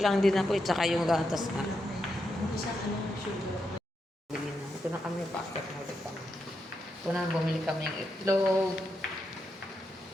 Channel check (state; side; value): normal; both; correlation 0.84